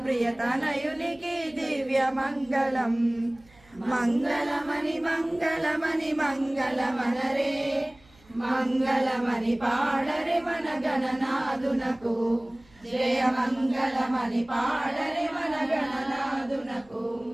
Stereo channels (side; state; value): right; noise; hum, 29 dB below the sound